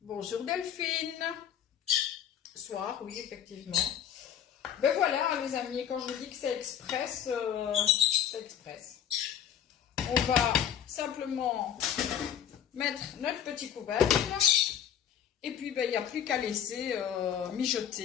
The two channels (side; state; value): right; quieter; 9.3 dB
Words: Bonjour Delphine! Soir, oui, effectivement. Ben voilà, les amis, quand je vous dis que c'est express, c'est express. On va simplement mettre notre petit couvercle Et puis, ben, il n'y a plus qu'à laisser